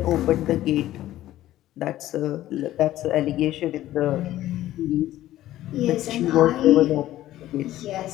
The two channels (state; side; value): quieter; right; 14.2 dB